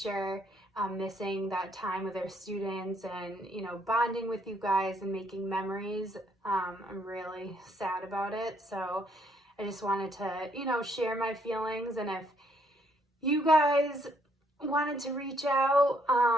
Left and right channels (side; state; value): both; normal; correlation 0.70